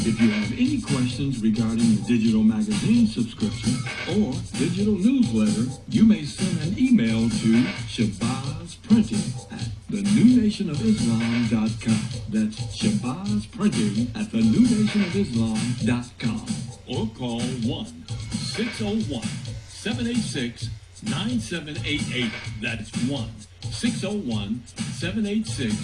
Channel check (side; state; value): both; identical; correlation 1.00